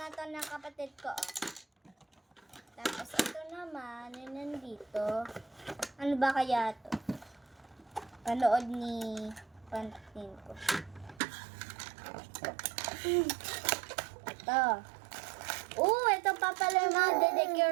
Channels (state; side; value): drops out; left; at 11.2 s